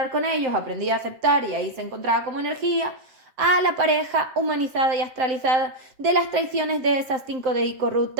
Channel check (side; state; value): left; late; 7.5 ms